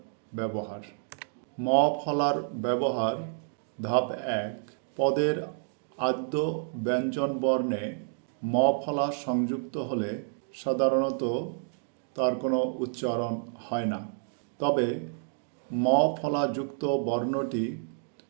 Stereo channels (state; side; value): silent; left; digital silence